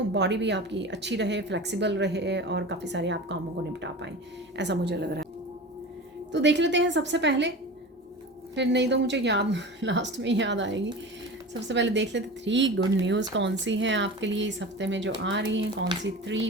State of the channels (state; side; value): normal; both; correlation 0.32